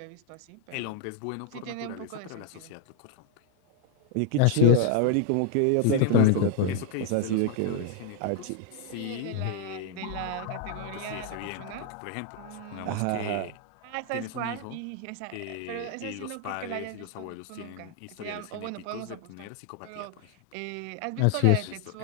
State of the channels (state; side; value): different; both; correlation 0.00